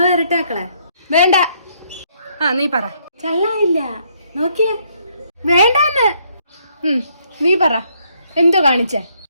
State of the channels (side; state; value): both; inverted; correlation -0.69